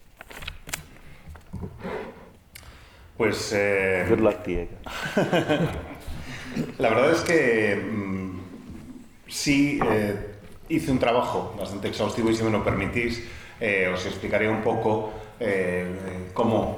Pues good luck, Diego. la verdad es que sí hice un trabajo bastante exhaustivo y si me lo permitís os explicaré un poco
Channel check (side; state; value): both; identical; correlation 1.00